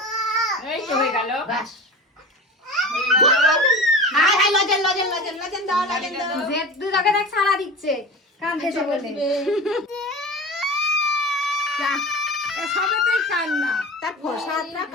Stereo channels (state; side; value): normal; both; correlation 0.32